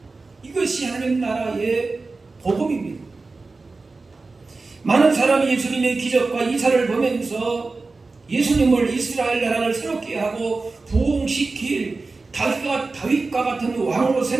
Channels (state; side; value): quieter; left; 3.8 dB